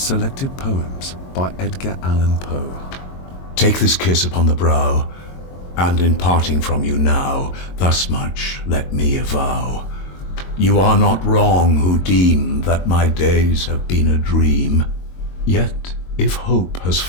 poems by Edgar Allan Poe. Take this kiss upon the brow, and in parting from you now, thus much let me avow. You are not wrong who deem that my days have been a dream. Yet, if hope has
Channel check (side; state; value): right; late; 22 ms